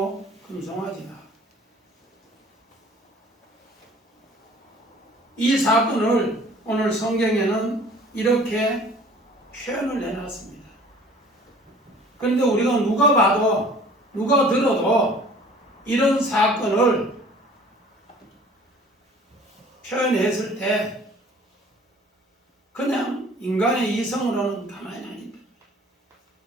금송아지다. 이 사건을 오늘 성경에는 이렇게 표현을 해놨습니다. 그런데 우리가 누가 봐도 누가 들어도 이런 사건을 표현했을 때 그냥 인간의 이성으로는 가만히 안 있다.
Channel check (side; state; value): both; normal; correlation 0.50